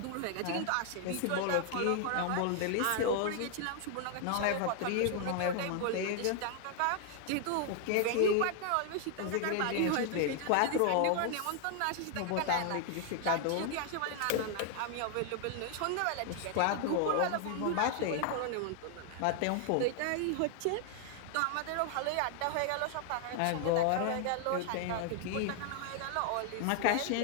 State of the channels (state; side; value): different; both; correlation 0.00